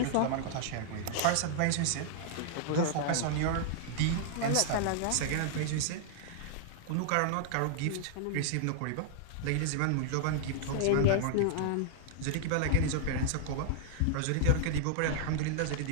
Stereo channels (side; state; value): both; different; correlation -0.01